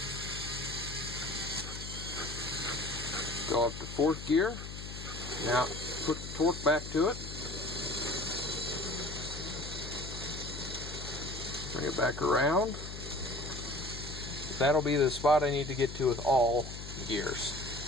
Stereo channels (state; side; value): noise; left; hum, 9 dB below the sound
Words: Go up to fourth gear. Now put the torque back to it. Bring it back around. That'll be the spot I need to get to with all gears.